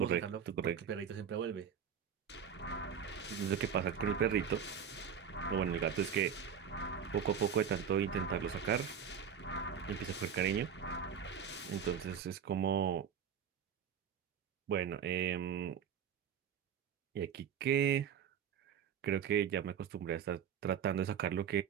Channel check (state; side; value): quieter; left; 7.8 dB